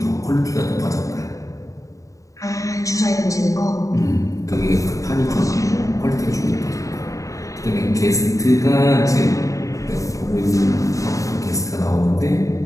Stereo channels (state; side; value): late; right; 0.16 ms